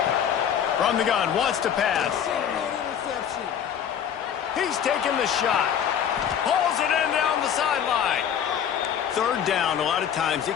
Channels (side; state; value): right; quieter; 8.8 dB